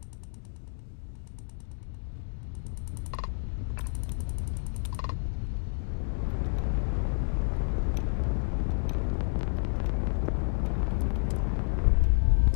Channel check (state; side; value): silent; right; digital silence